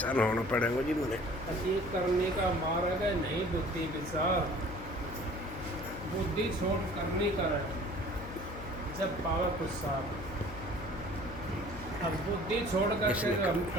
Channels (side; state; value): left; noise; hum, 12 dB below the sound